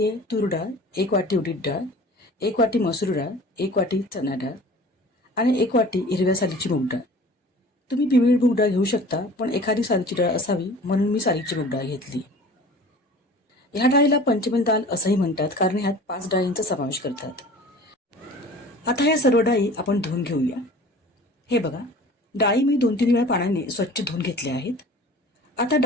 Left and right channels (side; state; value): both; normal; correlation 0.44